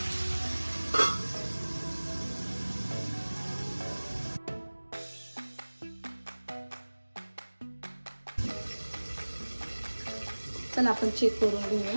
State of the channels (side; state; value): both; inverted; correlation -1.00